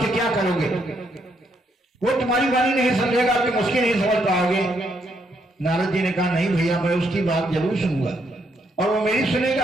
क्या करोगे, वो तुम्हारी वाणी नहीं समझेगा, तुम उसकी नहीं समझ पाओगे। नारद जी ने कहा नहीं भैया, मैं उसकी बात जरूर सुनूंगा और वो मेरी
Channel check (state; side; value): normal; both; correlation 0.75